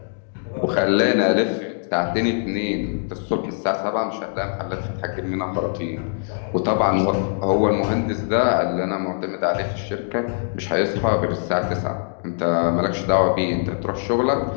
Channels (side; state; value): right; silent; 64 dB below the other